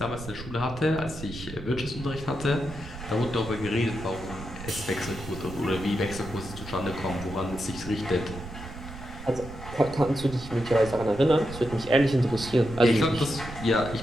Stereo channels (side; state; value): right; noise; rumble, 12 dB below the sound